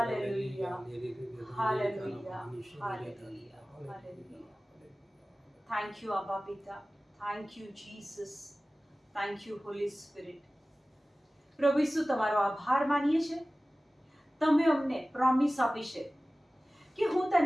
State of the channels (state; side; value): normal; both; correlation 0.97